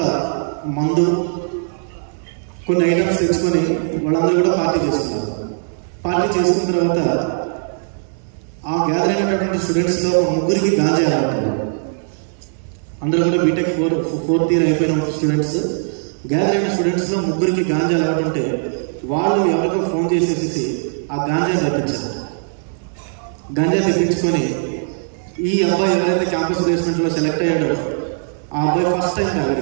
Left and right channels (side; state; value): left; silent; 63 dB below the other